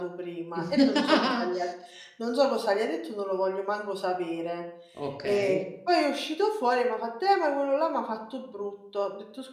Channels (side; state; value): both; identical; correlation 1.00